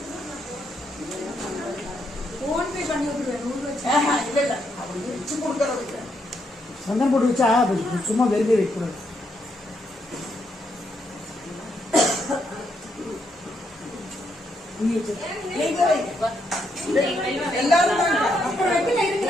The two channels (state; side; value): normal; both; correlation 0.77